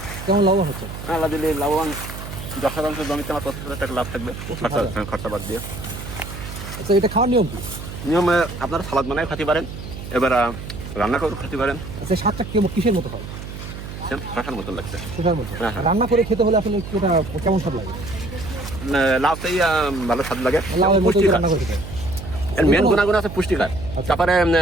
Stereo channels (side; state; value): right; noise; hum, 10 dB below the sound